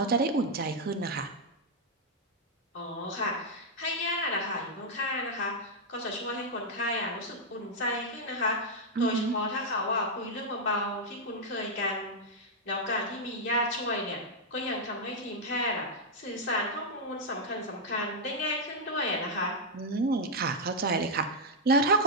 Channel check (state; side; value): normal; both; correlation -0.03